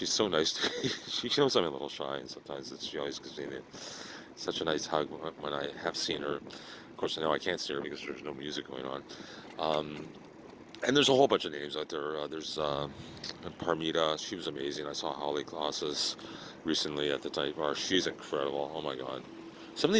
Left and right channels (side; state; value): both; identical; correlation 1.00